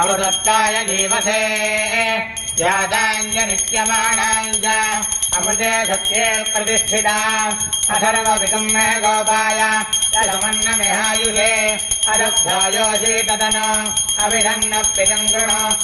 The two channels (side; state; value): both; identical; correlation 1.00